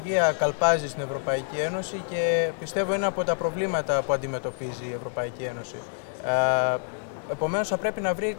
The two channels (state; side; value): silent; right; digital silence